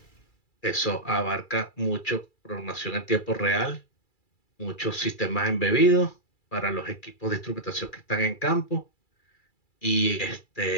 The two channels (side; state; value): right; late; 2.3 ms